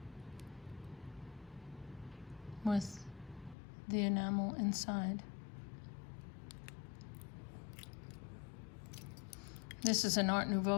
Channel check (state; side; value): drops out; right; at 3.6 s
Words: With the enamel inside. This is an Art